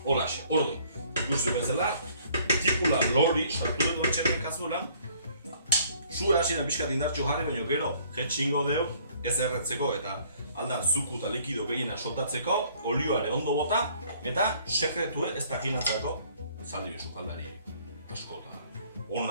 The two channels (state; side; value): inverted; both; correlation -0.59